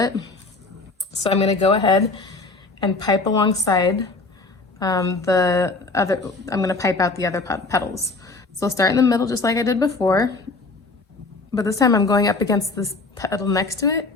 it. So I'm gonna go ahead and pipe alongside I'm gonna pipe out the other petals. So I'll start in the middle just like I did before, but this time I'm going up against this petal next to it.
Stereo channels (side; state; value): right; quieter; 3.6 dB